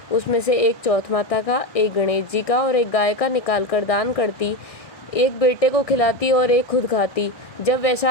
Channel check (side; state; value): right; late; 1.6 ms